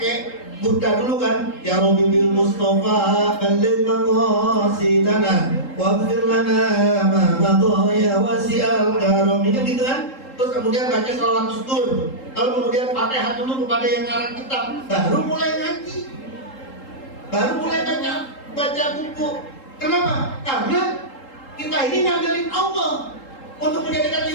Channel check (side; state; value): right; late; 3.8 ms